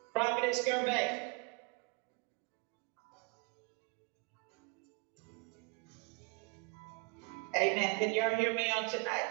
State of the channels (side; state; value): left; quieter; 31.3 dB